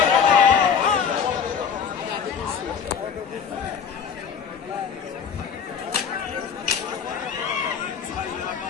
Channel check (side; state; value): right; quieter; 7.0 dB